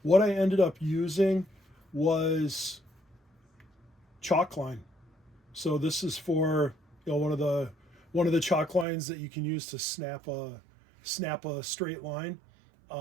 what I ended up using was chalk line. So this is for one of the chalk lines that you can use to snap a straight line.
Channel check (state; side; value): drops out; left; at 8.8 s